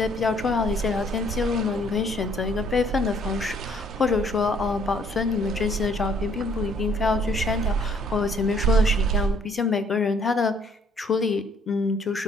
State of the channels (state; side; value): normal; both; correlation 0.62